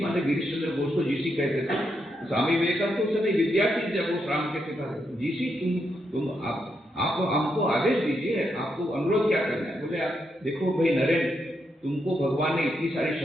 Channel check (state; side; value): normal; both; correlation 0.81